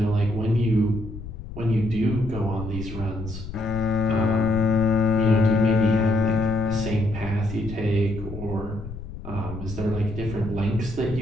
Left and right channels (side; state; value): left; noise; rumble, 10 dB below the sound